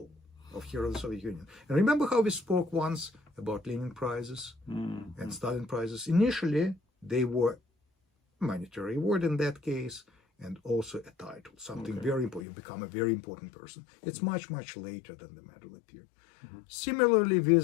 of Hero of the Soviet Union. And remember how we spoke once about Lenin prizes and Stalin prizes? Initially, they were monetary award in that case, and also a title, something very important. You become a very important person. It's much, much later than the medal appeared. Similarly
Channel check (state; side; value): drops out; right; at 12.4 s